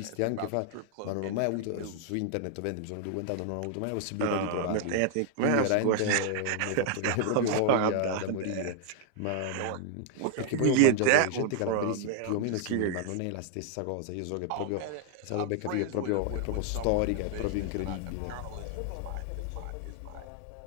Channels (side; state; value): both; different; correlation 0.00